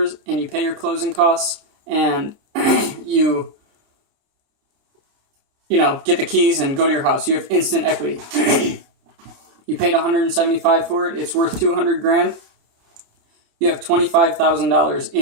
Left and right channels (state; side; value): late; left; 30 ms